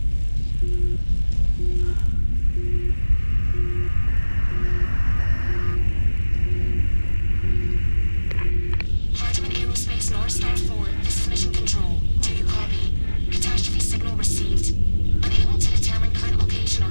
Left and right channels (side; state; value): both; inverted; correlation -1.00